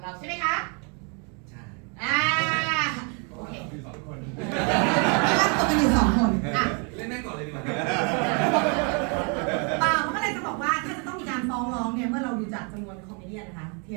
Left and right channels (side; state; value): left; quieter; 36.4 dB